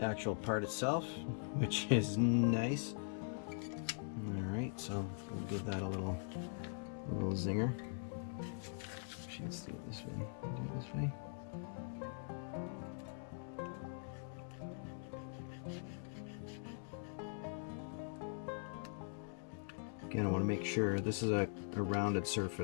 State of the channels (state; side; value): silent; right; digital silence